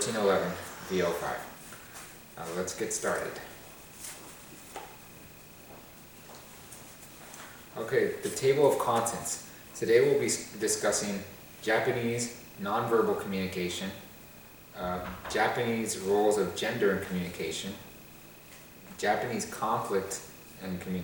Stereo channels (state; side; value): noise; left; rumble, 25 dB below the sound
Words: VO5. Let's get started. Okay, the table of contents. Today we'll be discussing Japanese nonverbal communication, Japanese roles of gender in communication, Japanese conflict in